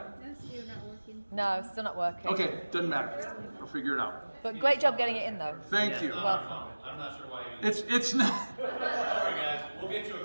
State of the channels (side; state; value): both; inverted; correlation -1.00